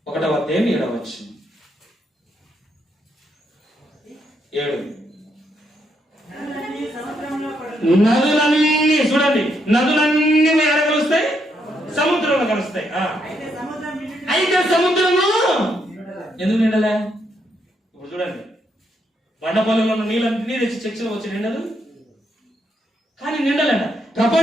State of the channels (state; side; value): normal; both; correlation 0.77